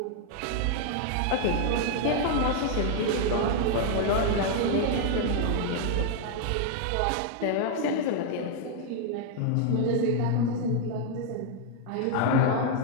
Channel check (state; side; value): different; both; correlation 0.00